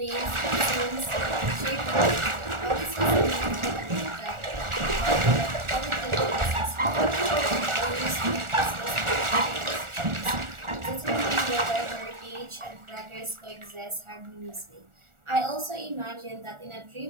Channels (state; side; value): late; left; 1.4 ms